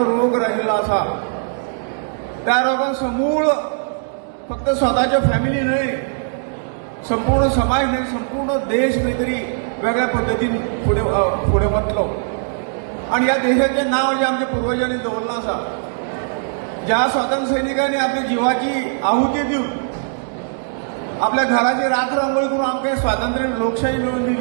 रोग राहिल्लो आसा. त्या रोगान समूळ फक्त स्वताच्यो फॅमिली न्हय, संपूर्ण समाज न्हय, संपूर्ण देश खंय तरी वेगळ्या पद्दतीन फुडें वतलो. आणि ह्या देशाचें नांव जें आमच्या पुर्वजांनी दवरलां आसा, ज्या स्वातंत्र्य सैनिकांनी आपल्या जिवाची आहुती दिवन आपल्या घराची रात्र अंघोळ करून आमकां स्वातंत्र्य लोकशाही मिळवून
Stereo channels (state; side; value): silent; left; digital silence